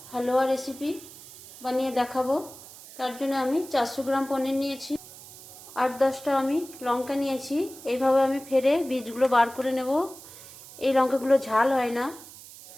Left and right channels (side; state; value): right; noise; hiss, 17 dB below the sound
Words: হালুয়া রেসিপি বানিয়ে দেখাবো। তার জন্য আমি 400 গ্রাম পনির নিয়েছি, 8-10টা আমি লঙ্কা নিয়েছি। এইভাবে আমি ফেরে বীজগুলো বার করে নেব। এই লঙ্কাগুলো ঝাল হয় না।